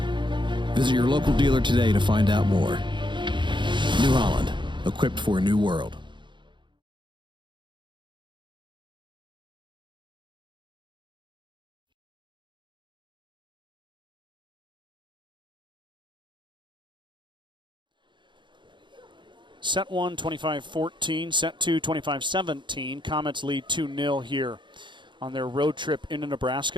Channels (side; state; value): left; late; 0.23 ms